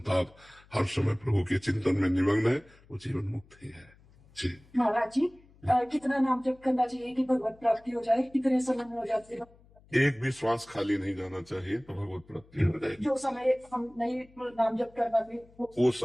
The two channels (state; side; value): noise; left; hum, 27 dB below the sound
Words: हर समय प्रभु के चिंतन में निमग्न है, वो जीवन मुक्त ही है। जी महाराज जी, कितना नाम जप करना चाहिए कि भगवत प्राप्ति हो जाए? कितने समय में हो जाती है? एक भी श्वास खाली नहीं जाना चाहिए तो भगवत प्राप्ति हो जाएगी। जो समय हम नहीं नाम जप कर पाते वो